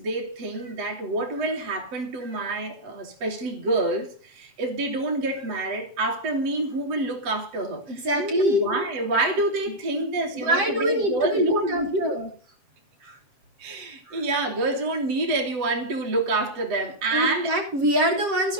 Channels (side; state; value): left; late; 7.6 ms